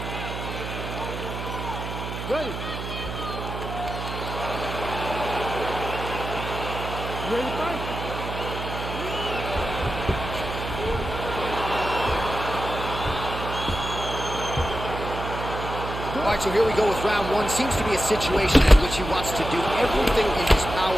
Ready. You ready to fight? All right, so here we go with round one. Seems to be a situation in which he wants to do everything in his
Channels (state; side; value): noise; right; hum, 6 dB below the sound